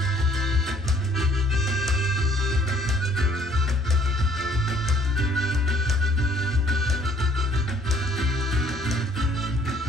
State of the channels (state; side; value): normal; both; correlation 0.61